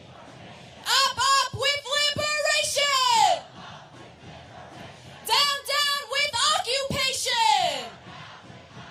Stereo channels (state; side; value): identical; both; correlation 1.00